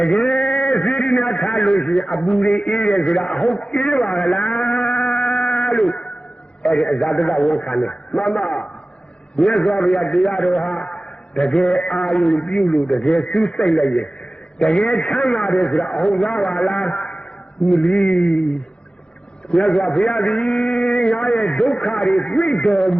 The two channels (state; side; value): late; right; 0.051 ms